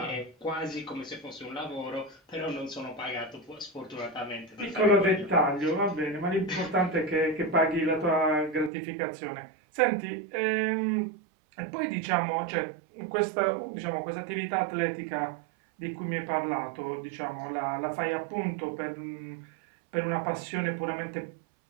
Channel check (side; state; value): left; drops out; at 8.7 s